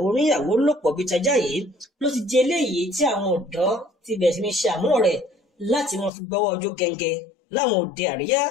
oníyàwó lòpọ̀ bíi tajá yìí ló ti di eléyìí tí àwọn ọ̀dọ́ ti bẹ̀rẹ̀ sí ní ṣe àmúlò rẹ̀ láti wọn fi gbọ́wọ́ ojú gẹ́ngẹ́ láwọn òde àríyá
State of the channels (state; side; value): drops out; right; at 6.1 s